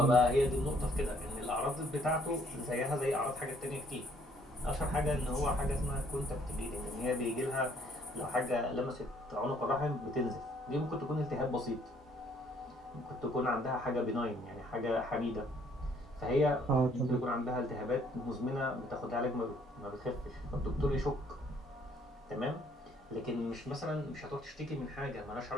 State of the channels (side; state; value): both; normal; correlation 0.64